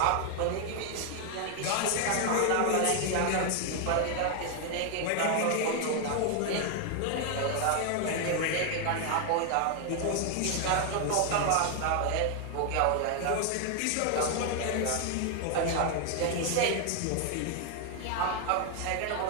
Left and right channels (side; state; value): both; different; correlation 0.00